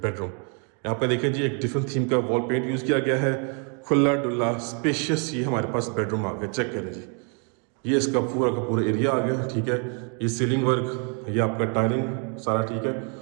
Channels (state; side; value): quieter; left; 38.9 dB